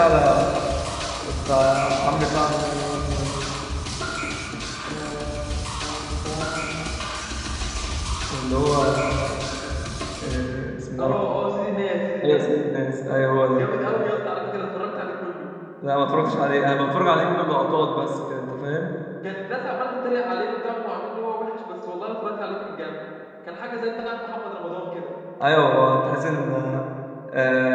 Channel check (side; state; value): both; identical; correlation 1.00